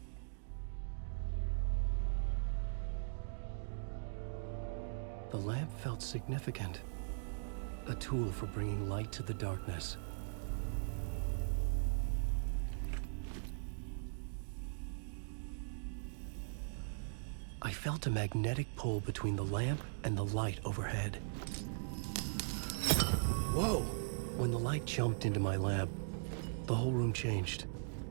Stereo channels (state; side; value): silent; left; digital silence